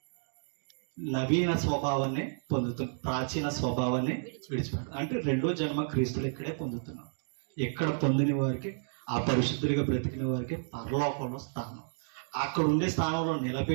నవీన స్వభావాన్ని పొందుతున్నాం, ప్రాచీన స్వభావాన్ని విడిచిపెడతాం. అంటే రెండో జన్మ క్రీస్తులు ఇక్కడే పొందుతున్నాం. ఎక్కడ పొందిన వారికి, ఆ పరిశుద్ధులుగా బ్రతికిన వారికి పరలోకంలో స్థానం. అక్కడ ఉండే స్థానంలో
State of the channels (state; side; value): silent; left; digital silence